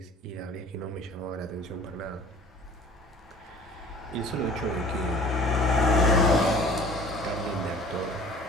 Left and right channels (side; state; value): both; normal; correlation 0.47